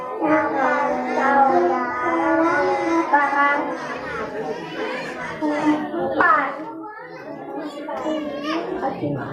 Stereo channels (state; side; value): identical; both; correlation 1.00